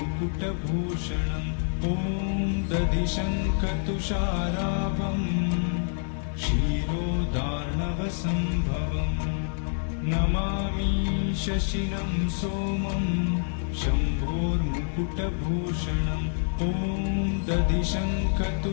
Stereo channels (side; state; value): right; silent; digital silence